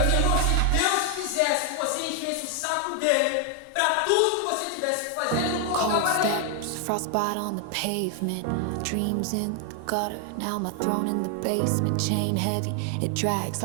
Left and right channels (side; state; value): both; different; correlation 0.00